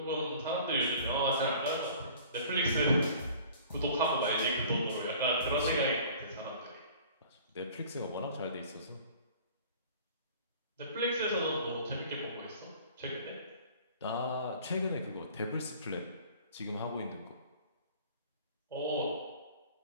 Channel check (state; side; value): inverted; both; correlation -0.47